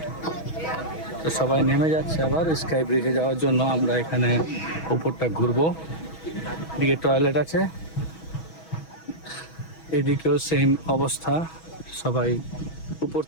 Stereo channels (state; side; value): late; right; 6.2 ms